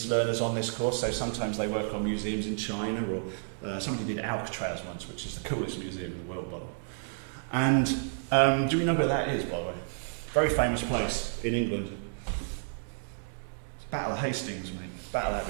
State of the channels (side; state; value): left; silent; digital silence